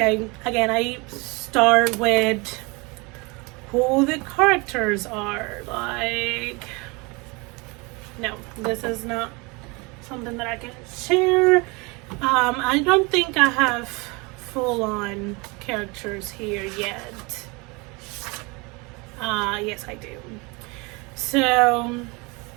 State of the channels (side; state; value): left; quieter; 27.4 dB